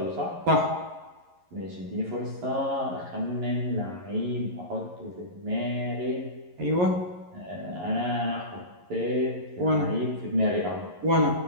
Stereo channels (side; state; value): left; late; 11 ms